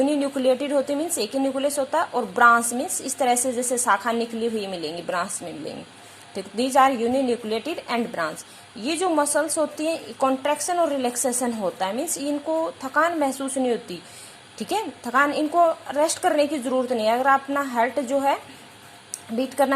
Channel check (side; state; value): both; identical; correlation 1.00